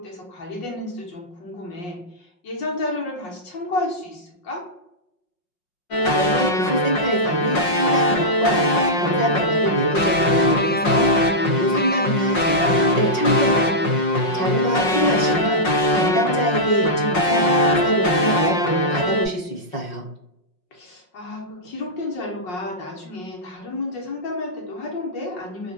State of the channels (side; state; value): right; late; 5.5 ms